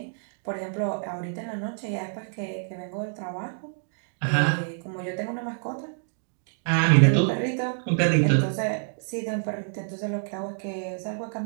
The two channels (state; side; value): silent; left; digital silence